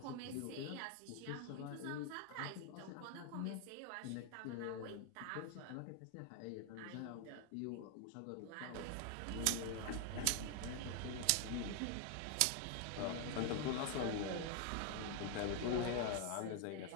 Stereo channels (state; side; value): different; both; correlation 0.00